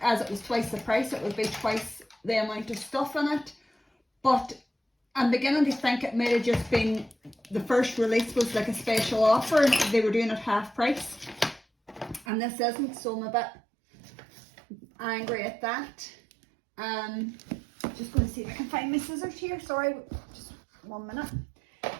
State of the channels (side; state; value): left; drops out; at 12.2 s